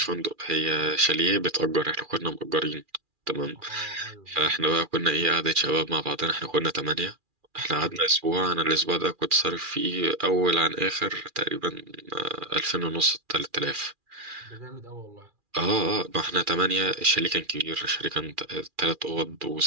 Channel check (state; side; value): late; left; 2.4 ms